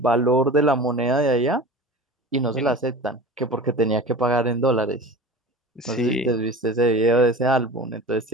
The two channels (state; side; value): normal; both; correlation 0.36